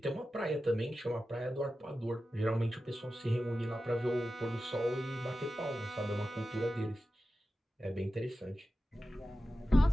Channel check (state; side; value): normal; both; correlation 0.93